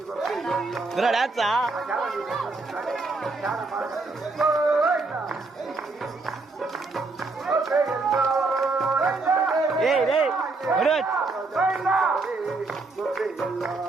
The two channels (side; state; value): left; quieter; 3.6 dB